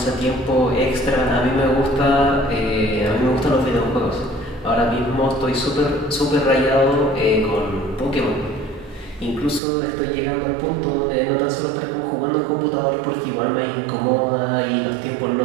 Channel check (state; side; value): drops out; left; at 9.6 s